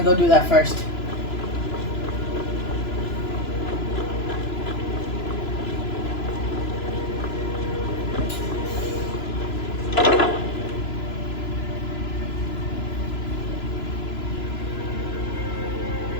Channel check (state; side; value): late; right; 3.0 ms